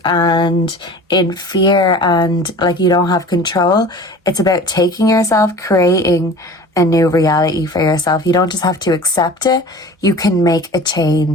and in fear and like you don't have control, it's about taking yourself, creating a new reality for yourself. You don't just have to accept it. You can make a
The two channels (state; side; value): normal; both; correlation 0.40